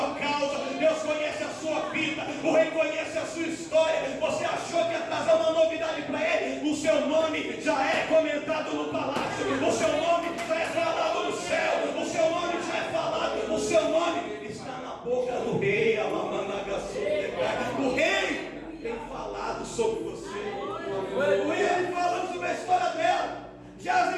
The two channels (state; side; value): identical; both; correlation 1.00